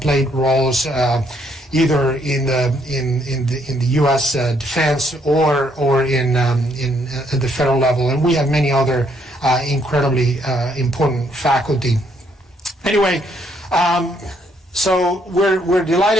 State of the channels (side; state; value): both; normal; correlation 0.70